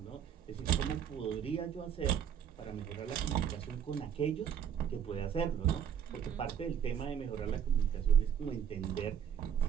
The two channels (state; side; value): quieter; left; 8.6 dB